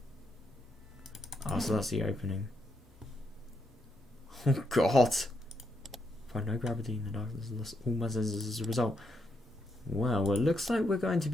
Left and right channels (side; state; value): both; normal; correlation 0.79